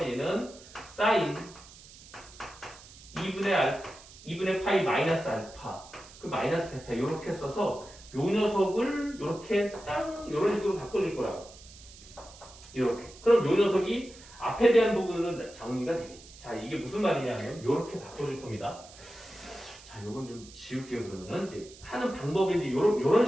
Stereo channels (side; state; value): right; noise; hiss, 20 dB below the sound